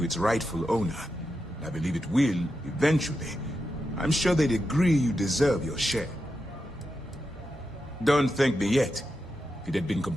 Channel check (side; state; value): both; normal; correlation 0.88